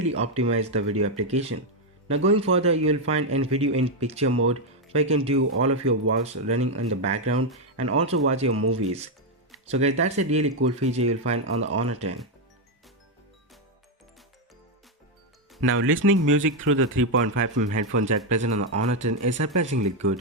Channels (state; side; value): normal; both; correlation 0.03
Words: optimize the video application. Now going further, you will find a video in picture mode where you can do all of your works running in the background and also watch your movies. So guys, that's a really cool feature you will find on the Honor 10. Now listening music through the 3.5mm headphone jack present on the Honor 10 is surprisingly